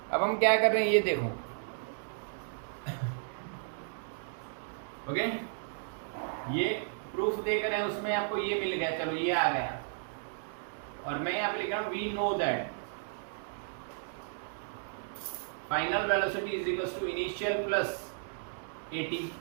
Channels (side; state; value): left; silent; digital silence